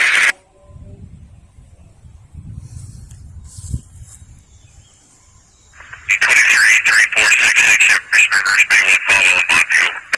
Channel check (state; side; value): identical; both; correlation 1.00